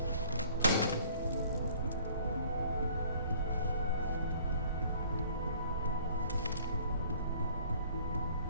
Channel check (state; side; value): inverted; both; correlation -0.55